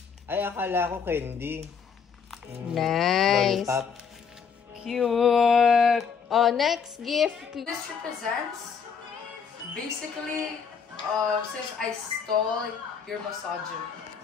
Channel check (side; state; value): right; quieter; 6.4 dB